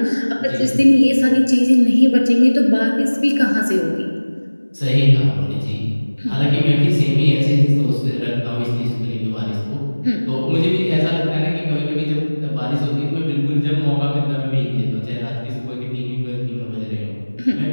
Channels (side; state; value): both; inverted; correlation -1.00